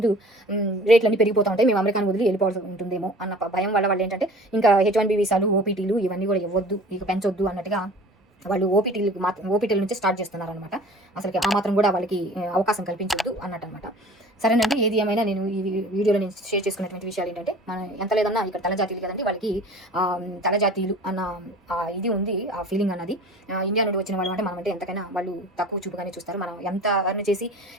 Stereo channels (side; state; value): both; normal; correlation 0.44